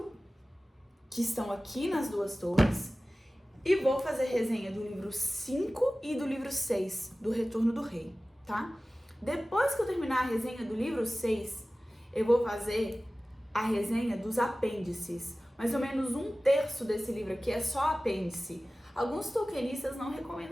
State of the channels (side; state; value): both; normal; correlation 0.97